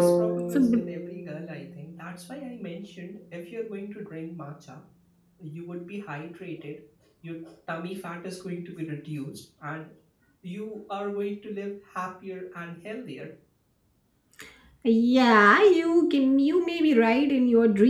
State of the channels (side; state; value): both; identical; correlation 1.00